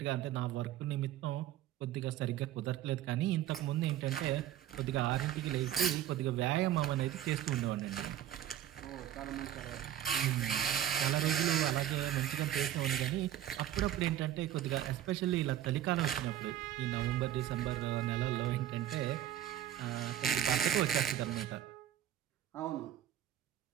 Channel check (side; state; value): left; quieter; 11.7 dB